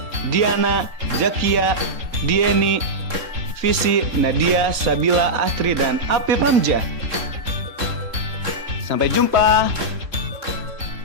Diana, Zakia, Dieni, Visi, Nadia, Sabila, Astri, dan Apip Hamzah. Sampai jumpa.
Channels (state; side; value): late; left; 3.7 ms